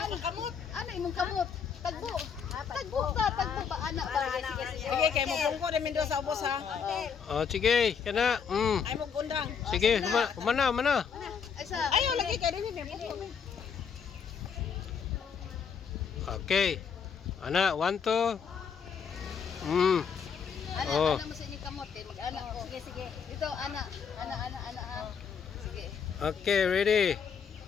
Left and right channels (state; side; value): quieter; right; 6.7 dB